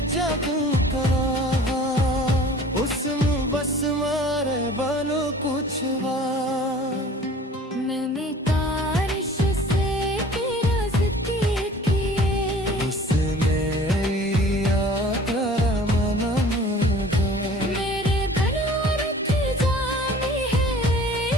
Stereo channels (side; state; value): both; normal; correlation 0.47